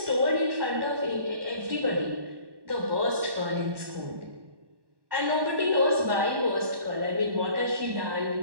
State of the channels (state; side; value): late; left; 1.1 ms